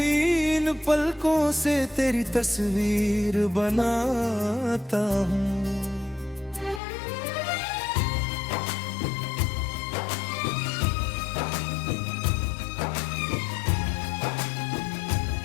इन पलकों से तेरी तस्वीर बनाता हूँ।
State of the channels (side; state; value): right; drops out; at 6.8 s